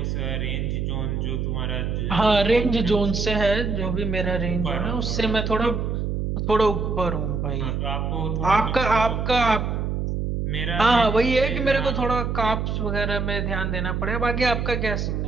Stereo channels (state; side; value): noise; right; hum, 1 dB below the sound